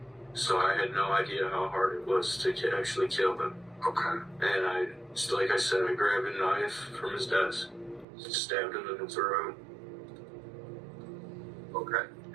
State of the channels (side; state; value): left; drops out; at 8.1 s